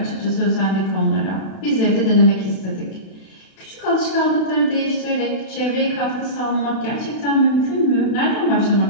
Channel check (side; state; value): right; late; 32 ms